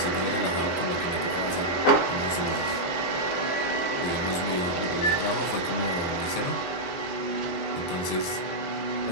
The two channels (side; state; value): right; late; 23 ms